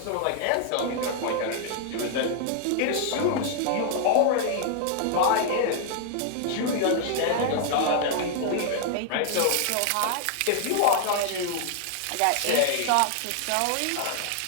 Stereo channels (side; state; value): both; different; correlation 0.00